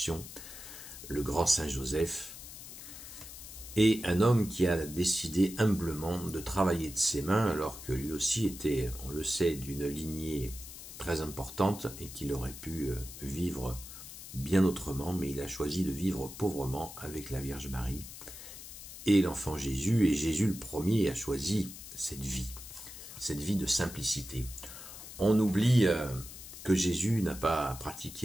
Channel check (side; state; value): left; noise; hiss, 13 dB below the sound